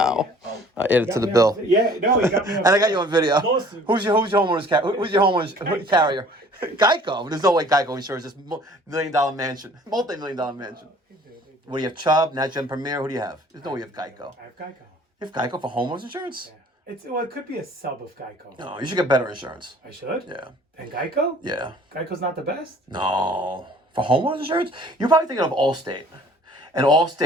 I added to the Got me on- bill. Yeah, no, you got me on And I got you on video. Lawsuit. Who's your homeowner's who's your homeowner's carrier? Geico. There's no way Geico insures this $1 million mansion, multi-million-dollar mansion. What do you have? Chubb, NatGen Premier. Who do you have? There's no way you have Geico. I have Geico. You have Geico for homeowners insurance? Yeah. It could be a sub of Geico. No, you should get better insurance. I should? Yeah. And Geico? Yeah. Geico's not the best? No. For homeowners insurance? You're probably thinking of Allstate. And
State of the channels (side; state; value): both; normal; correlation 0.53